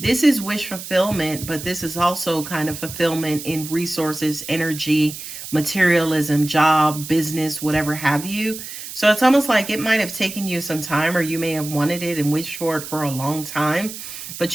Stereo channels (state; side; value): noise; right; hiss, 10 dB below the sound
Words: this is wish fulfillment, but this is also kind of fulfillment in resources, energy, materialism, job, business, whatever have you. So it's almost like it might have taken you some time, or you may have wanted it and wished for it for a long time,